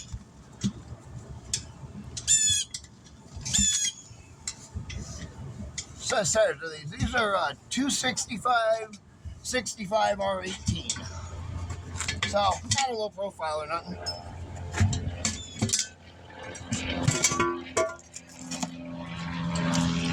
So size are these? These are 265, 65 R18. So not a low profile or nothing.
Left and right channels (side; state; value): both; identical; correlation 1.00